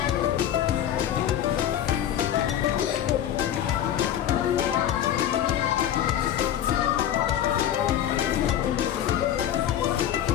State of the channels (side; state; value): right; quieter; 10.8 dB